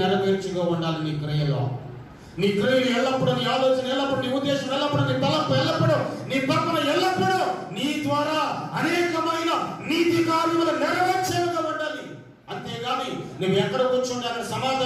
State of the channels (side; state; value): both; identical; correlation 1.00